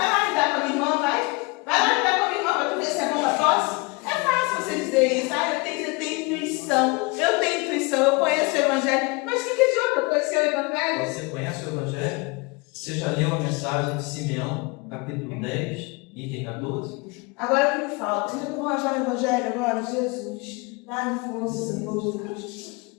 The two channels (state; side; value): quieter; right; 27.5 dB